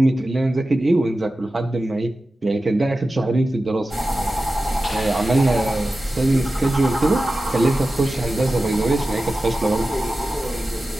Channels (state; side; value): normal; both; correlation 0.94